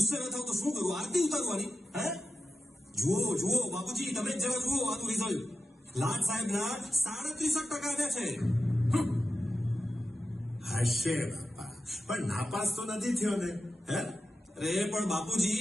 ન થાવ તો શું કરું? આરતી ઉતારવાની? હે, જુઓ જુઓ બાપુજી, તમે જ જરા જુઓ આનું રિઝલ્ટ. લાડ સાહેબના 37% આવ્યા છે. હશે બાપા, પણ નાપાસ તો નથી થયો ને? હે, અરે પણ બાપુજી,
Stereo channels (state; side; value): normal; both; correlation 0.93